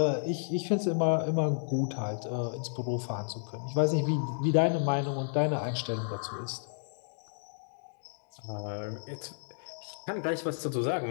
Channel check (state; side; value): silent; right; digital silence